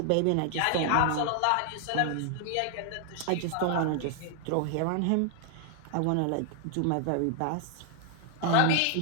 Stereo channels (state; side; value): different; both; correlation 0.00